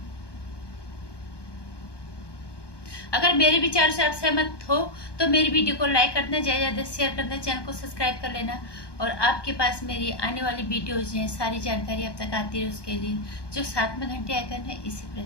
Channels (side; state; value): right; late; 1.2 ms